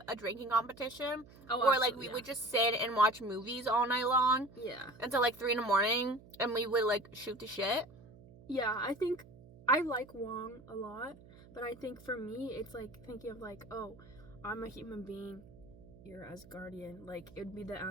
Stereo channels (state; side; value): noise; right; hum, 21 dB below the sound